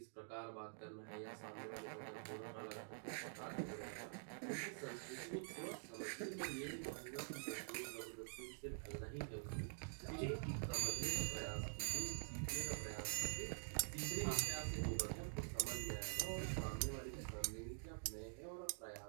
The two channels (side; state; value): left; silent; digital silence